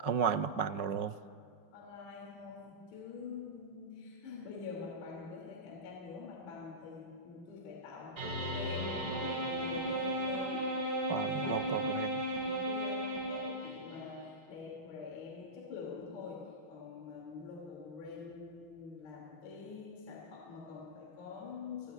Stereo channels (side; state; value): right; late; 5.4 ms